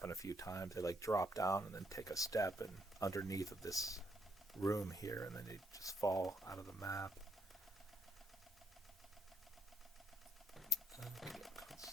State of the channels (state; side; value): normal; both; correlation 0.72